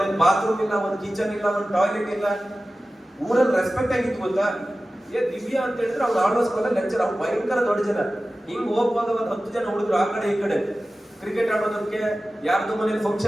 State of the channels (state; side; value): normal; both; correlation 0.95